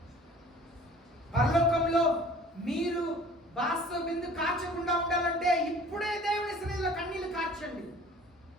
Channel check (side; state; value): both; normal; correlation 0.49